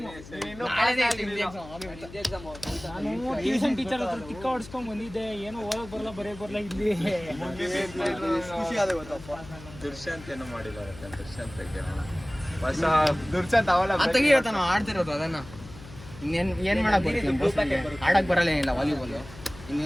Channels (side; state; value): left; noise; hum, 16 dB below the sound